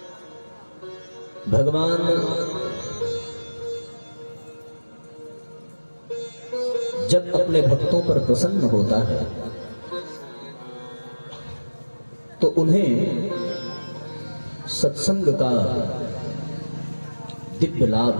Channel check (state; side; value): inverted; both; correlation -1.00